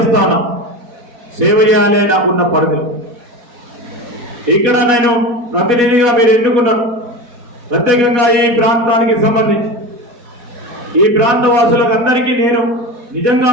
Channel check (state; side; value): late; left; 4.2 ms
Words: ఉన్నా, సేవ చేయాలి నాకున్న పరిధులు. ఇక్కడ నేను ప్రతినిధిగా మీరు ఎన్నుకున్నారు, ప్రత్యేకంగా ఈ ప్రాంతానికి సంబంధించి ఈ ప్రాంత వాసులకు అందరికీ నేను నిజంగా